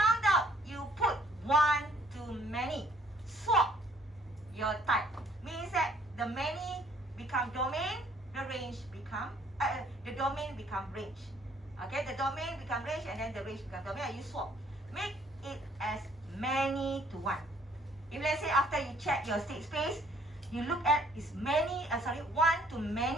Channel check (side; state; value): both; normal; correlation 0.61